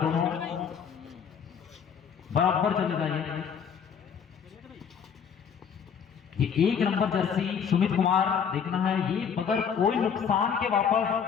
बराबर चलेगा ये 1 नंबर जर्सी सुमित कुमार। देखना है ये बगैर कोई नुकसान के वापस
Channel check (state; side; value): quieter; right; 7.2 dB